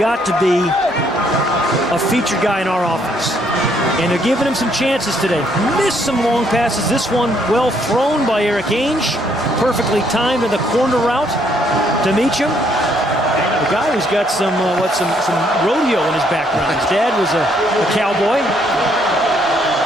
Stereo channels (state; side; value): normal; both; correlation 0.69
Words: to be a featured guy in our offense. And they're giving him some chances today. Missed some long passes. This one well thrown by Eric Ainge. Perfectly timed in the corner route to Meacham. The guy who's got some rodeo in his background. His dad was a cowboy.